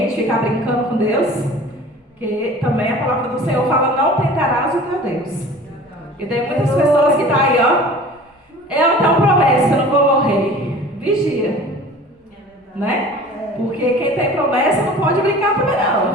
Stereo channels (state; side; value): normal; both; correlation 0.43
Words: ficar brincando com Deus, que também a palavra do Senhor fala, não tentarás o teu Deus. E tem muitas pessoas que estão aí, ó, eu tenho promessa, eu não vou morrer. Vigia. Né? Porque quem tem promessa não pode brincar também